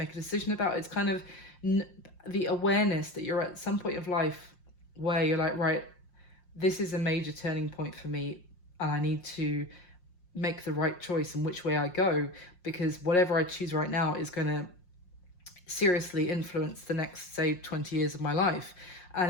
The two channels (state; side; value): late; right; 5.6 ms